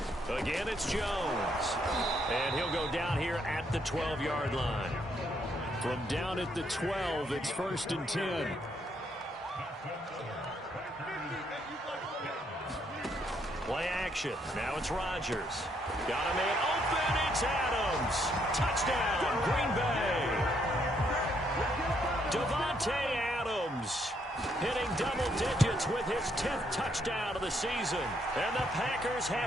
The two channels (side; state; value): both; normal; correlation 0.73